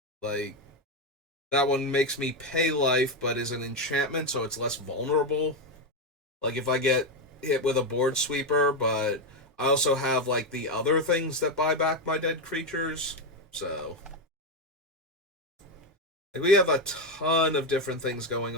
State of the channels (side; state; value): both; normal; correlation 0.08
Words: Like, that one makes me pay life, but is an enchantment, so it's less vulnerable. Like, if I get hit with a board sweeper, but I also have, like, the other things that buy back my dead creatures. So, like, we have a ton of different things going